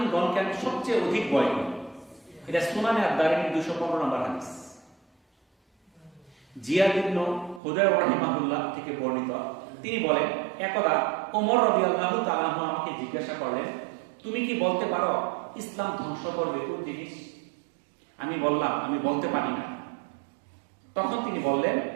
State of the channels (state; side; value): drops out; left; at 7.6 s